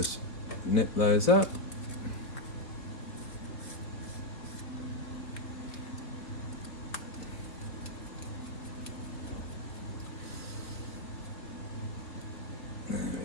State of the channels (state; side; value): late; right; 3.3 ms